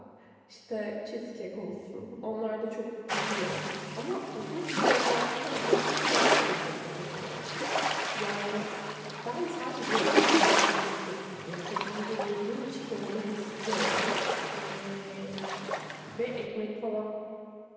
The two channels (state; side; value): identical; both; correlation 1.00